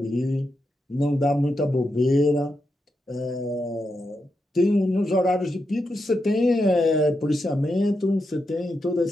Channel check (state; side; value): normal; both; correlation 0.85